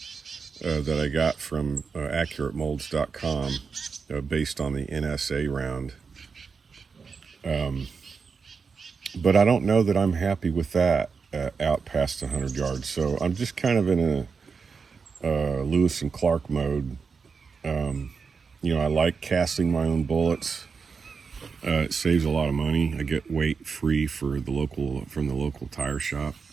that I got from AccurateMolds.com based on the NSA round. But I don't know that I'm happy with that out past 100 yards. So I'm just kind of in a Lewis and Clark mode. I like casting my own bullets. It saves a lot of money. I get weight free from the local tire shop.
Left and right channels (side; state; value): left; quieter; 5.3 dB